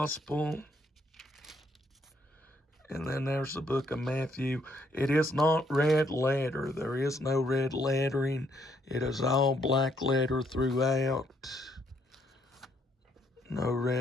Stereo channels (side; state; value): both; normal; correlation 0.71